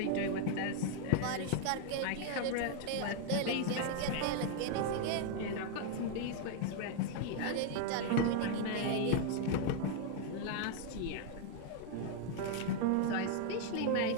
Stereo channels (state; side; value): different; both; correlation 0.00